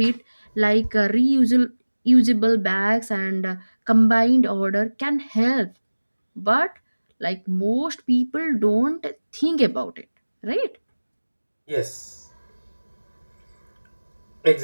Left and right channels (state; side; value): inverted; both; correlation -1.00